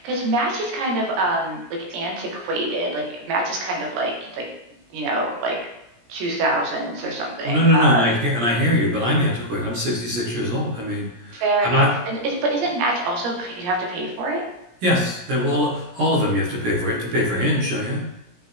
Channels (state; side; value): late; left; 17 ms